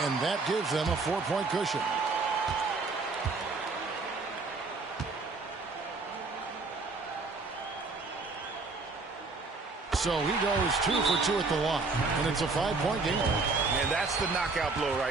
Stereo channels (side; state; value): left; quieter; 3.9 dB